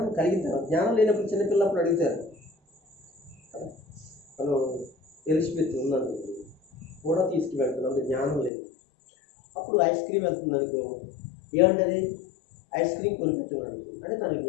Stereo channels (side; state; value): right; drops out; at 8.5 s